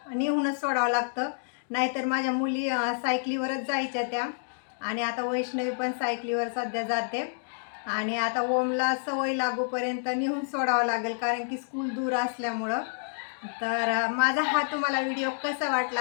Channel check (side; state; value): right; silent; digital silence